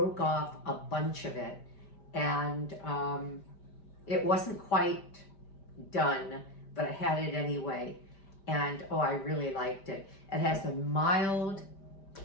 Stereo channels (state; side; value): late; right; 5.1 ms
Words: off a bunch of it, and it wasn't quite done, but I had it anyway. And oh, I really liked it. It has a mild